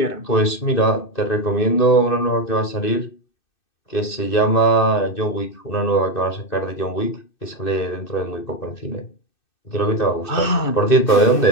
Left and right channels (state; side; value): late; right; 2.6 ms